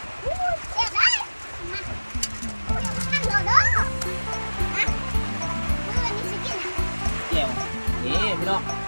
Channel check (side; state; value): both; inverted; correlation -1.00